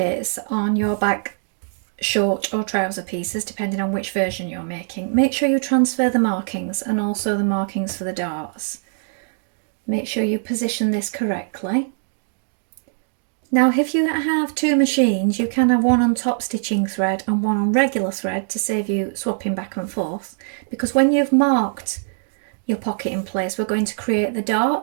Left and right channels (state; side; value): silent; left; digital silence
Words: on your back short or trouser pieces depending on which version you're making. Make sure you transfer the markings and also the markings for the darts. Make sure you position this correctly. Now if you have two machines, you can have one on top stitching thread and one on regular thread to save you swapping back and forth, because when you've marked your pocket in place, we're going to create the